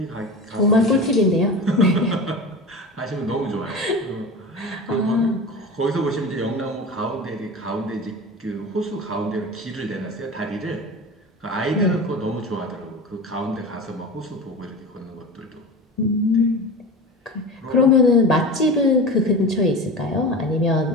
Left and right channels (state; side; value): normal; both; correlation 0.31